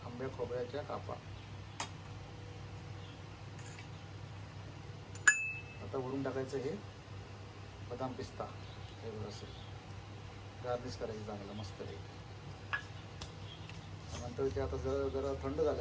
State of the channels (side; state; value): both; identical; correlation 1.00